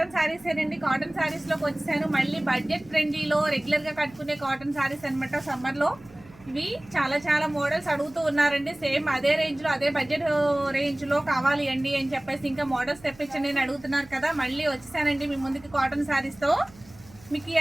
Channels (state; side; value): noise; right; hum, 24 dB below the sound